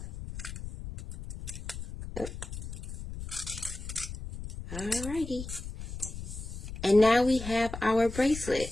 Oh. Alrighty. And now we have our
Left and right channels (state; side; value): noise; left; rumble, 9 dB below the sound